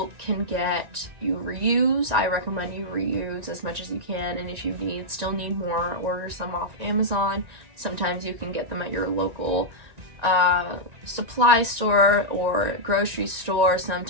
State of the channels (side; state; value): left; late; 1.9 ms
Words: reuse. I recommend you reuse as much as you can, and if you still need more, order some off Amazon. Sometimes you can get them at your local supply store or grocery store,